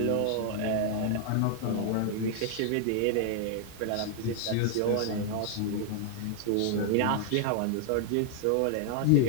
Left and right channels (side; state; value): both; different; correlation 0.00